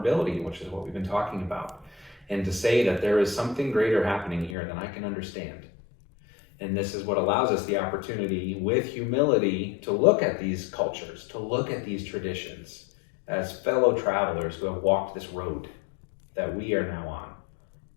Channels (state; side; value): drops out; right; at 4.5 s